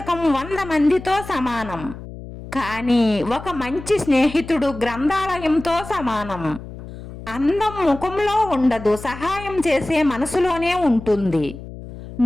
100 మందితో సమానం, కానీ ఒక మంచి స్నేహితుడు గ్రంథాలయంతో సమానం. అందం ముఖంలో ఉండదు, సహాయం చేసే మనసులోనే ఉంటుంది.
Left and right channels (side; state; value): left; noise; hum, 13 dB below the sound